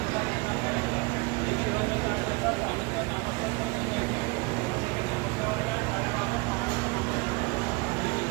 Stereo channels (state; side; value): quieter; left; 26.7 dB